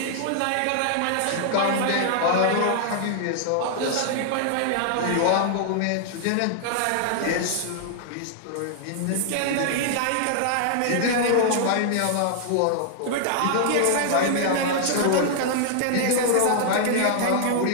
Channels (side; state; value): both; different; correlation -0.01